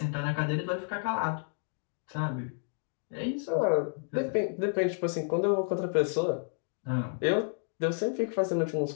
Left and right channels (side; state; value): right; silent; 57 dB below the other